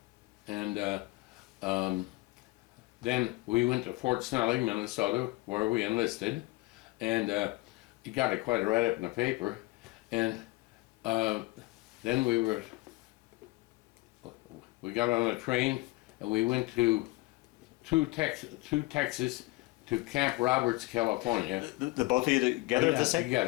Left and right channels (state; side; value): quieter; right; 21.8 dB